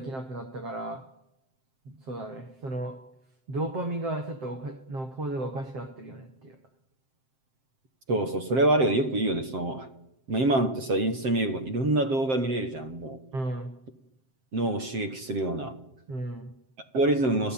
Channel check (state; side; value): late; left; 7.6 ms